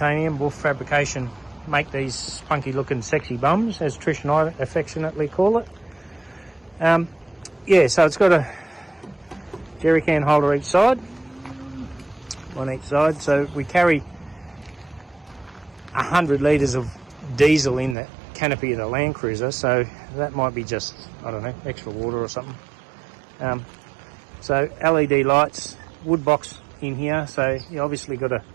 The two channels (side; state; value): left; drops out; at 17.9 s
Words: Wolf Fabrication, make these spunky looking sexy bums, as Trish and I affectionately call it. Yeah, so it's got a jerry can holder each side, on each side. So we carry 100 litres of diesel in the canopy of the Land Cruiser, so that might be just, I don't know, extra water or something. So LED lights, wood box in here, so you obviously got to